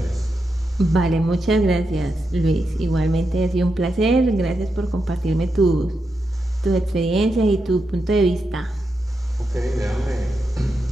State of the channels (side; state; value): both; normal; correlation 0.86